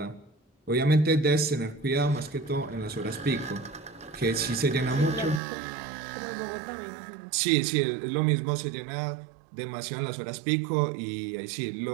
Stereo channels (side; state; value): left; drops out; at 5.4 s